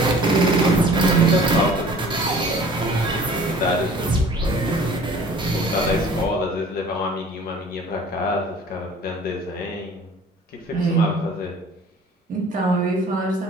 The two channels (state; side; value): normal; both; correlation 0.49